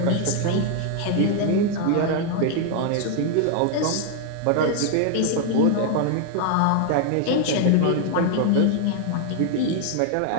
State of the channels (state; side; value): different; both; correlation 0.00